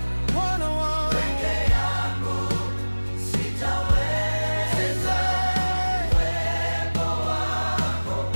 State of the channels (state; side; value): inverted; both; correlation -1.00